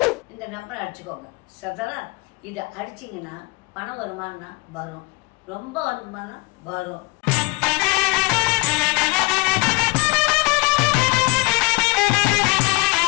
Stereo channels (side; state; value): right; quieter; 25.7 dB